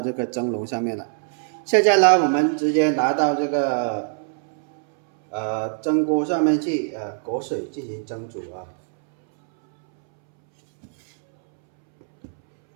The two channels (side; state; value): left; silent; 64 dB below the other